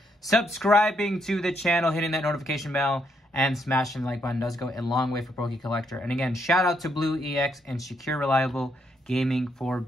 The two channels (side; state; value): both; normal; correlation 0.75